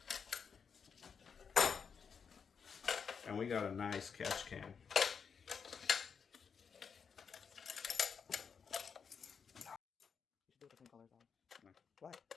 And we got a nice catch can. Why?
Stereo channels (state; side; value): quieter; right; 6.3 dB